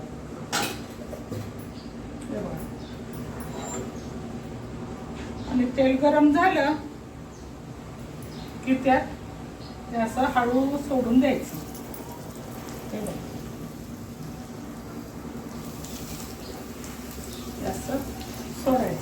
आणि तेल गरम झालं की त्यात ते असं हळू सोडून द्यायचं. हे बघा, असं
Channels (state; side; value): identical; both; correlation 1.00